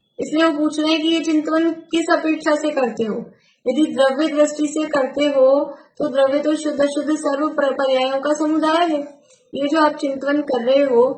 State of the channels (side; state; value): both; identical; correlation 1.00